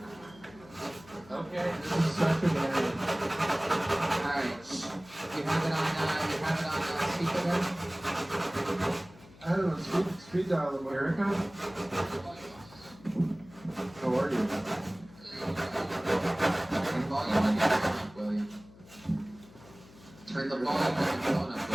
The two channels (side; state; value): left; noise; hum, 22 dB below the sound